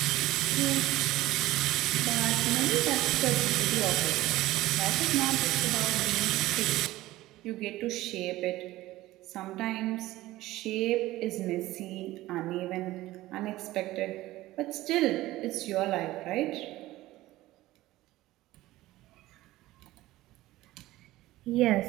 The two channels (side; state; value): left; quieter; 16.9 dB